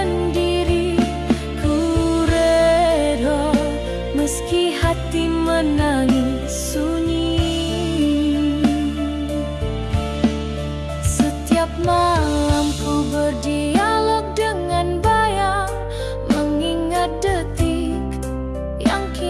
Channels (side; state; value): both; identical; correlation 1.00